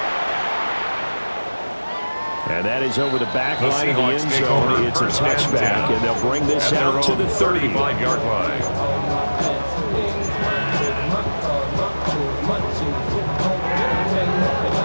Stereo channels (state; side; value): inverted; both; correlation -1.00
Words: And that is over the back The line of the Seahawks end take zone. over It's a 1st and touchback, 10. and they'll bring this At their out to own the 30. 35-yard line.